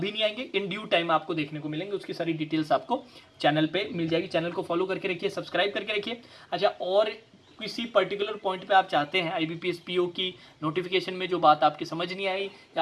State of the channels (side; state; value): both; identical; correlation 1.00